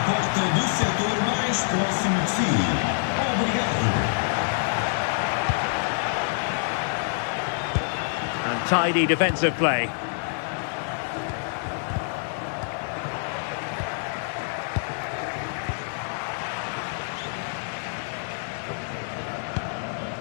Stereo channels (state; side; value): silent; right; digital silence